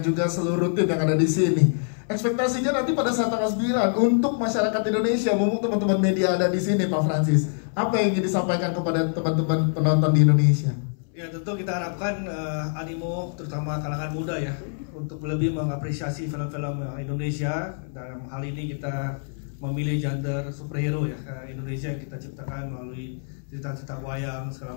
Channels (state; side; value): silent; right; 62 dB below the other